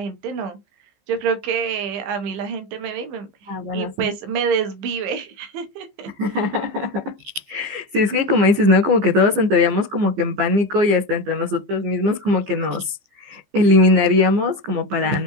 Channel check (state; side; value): late; left; 15 ms